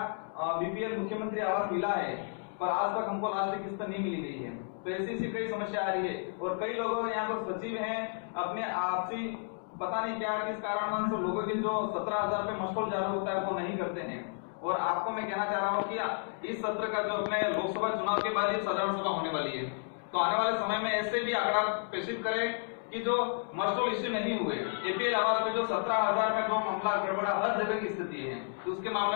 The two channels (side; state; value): right; silent; 56 dB below the other